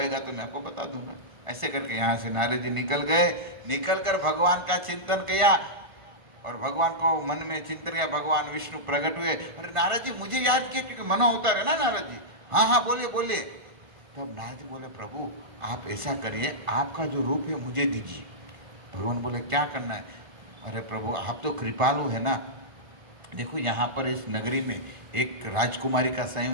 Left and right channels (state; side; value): late; left; 1.5 ms